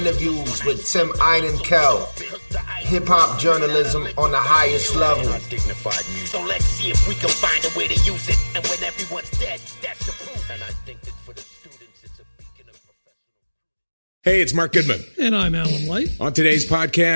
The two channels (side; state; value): both; inverted; correlation -1.00